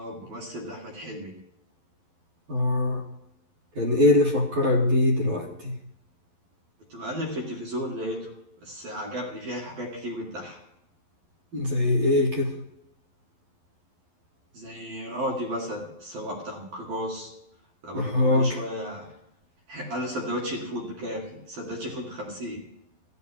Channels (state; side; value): late; left; 11 ms